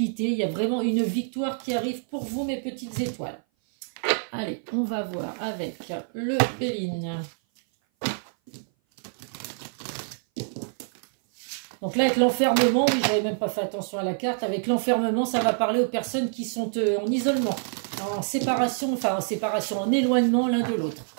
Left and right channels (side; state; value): left; silent; 57 dB below the other